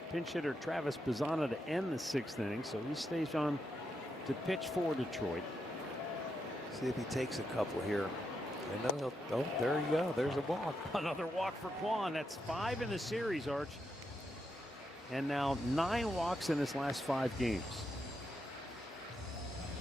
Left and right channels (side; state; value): both; normal; correlation 0.83